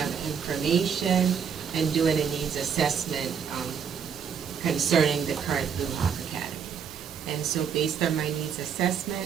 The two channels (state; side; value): quieter; left; 7.3 dB